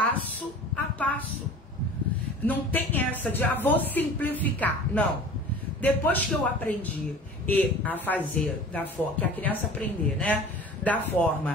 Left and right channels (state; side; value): normal; both; correlation 0.42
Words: a passo. Não tem essa de, vou simplificar. Não. Depois que eu aprendi a fazer da forma, que a criança aprender, né? Da